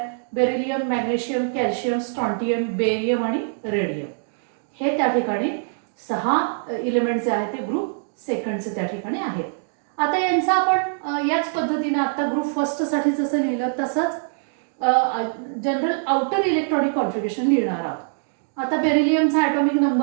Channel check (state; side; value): silent; left; digital silence